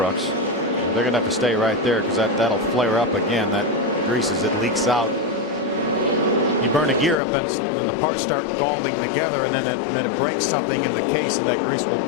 They're going to have to stay right there because that'll flare up again. That grease, as it leaks out. You burn a gear up and then the parts start galding together, and then it breaks something in the case, and that grease will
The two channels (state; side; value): drops out; right; at 7.2 s